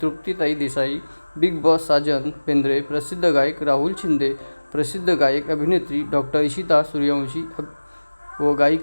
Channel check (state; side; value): inverted; both; correlation -1.00